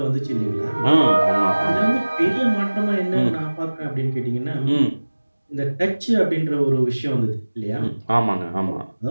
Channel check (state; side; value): inverted; both; correlation -1.00